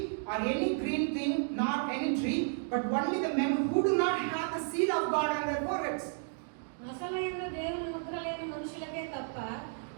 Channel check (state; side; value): silent; left; 56 dB below the other